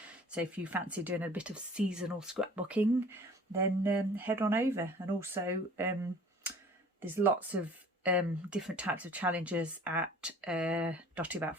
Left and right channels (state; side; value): normal; both; correlation 0.48